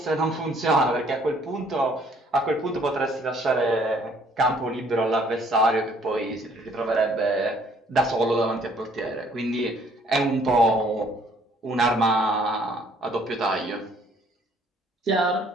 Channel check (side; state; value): both; normal; correlation 0.61